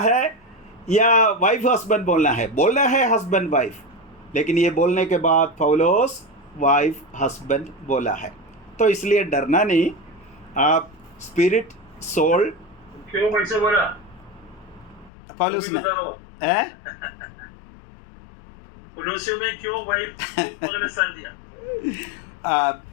या वाइफ हस्बैंड बोलना है? बोलना है हस्बैंड वाइफ, लेकिन ये बोलने के बाद पौलुस वाइफ हस्बैंड बोला है। तो इसलिए डरना नहीं। आप स्पिरिट सोल, क्यों वैसे बोला पौलुस ने कोलोसियों में क्यों वाइफ को स्थान दिया?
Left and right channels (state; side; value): drops out; right; at 15.1 s